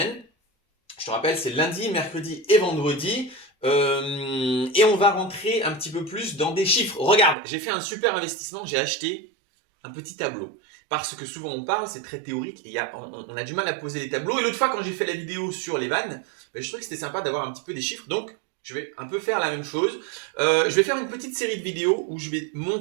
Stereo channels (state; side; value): drops out; left; at 7.4 s